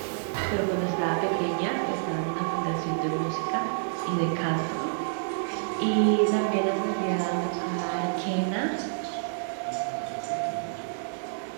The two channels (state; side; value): silent; left; digital silence